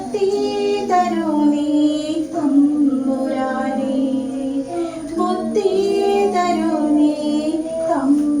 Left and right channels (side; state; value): both; identical; correlation 1.00